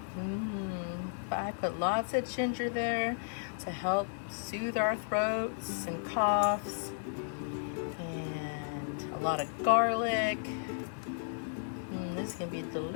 But I put lots of ginger there to help soothe our throats and coughs. And a lot of garlic. This is gonna be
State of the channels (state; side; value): silent; right; digital silence